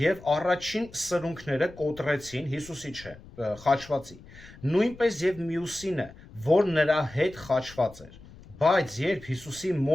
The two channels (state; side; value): noise; left; rumble, 20 dB below the sound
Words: առաջին սրունքները կոտրեցին Հիսուսի խաչվածի, նույնպես եւ մյուսինը, որ նրա հետ խաչված էր, բայց երբ Հիսուսի